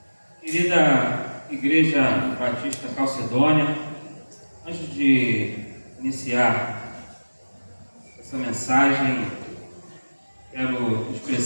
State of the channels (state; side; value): inverted; both; correlation -1.00